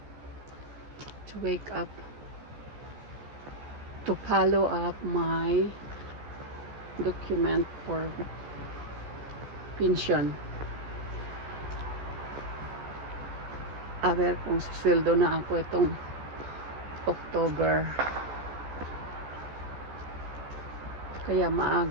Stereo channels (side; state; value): left; late; 14 ms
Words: to wake up to follow up my document for pension. A ver kung susweldo na ako itong October. Kaya